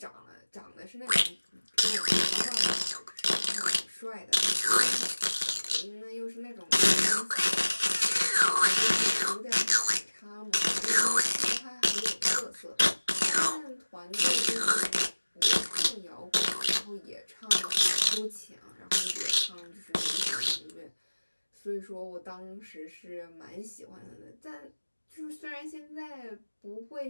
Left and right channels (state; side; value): inverted; both; correlation -1.00